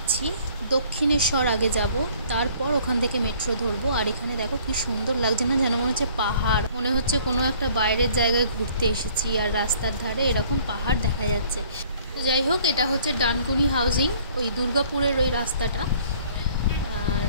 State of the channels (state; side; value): inverted; both; correlation -0.56